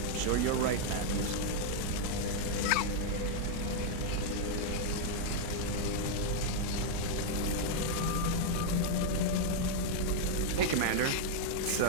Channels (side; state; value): both; different; correlation 0.00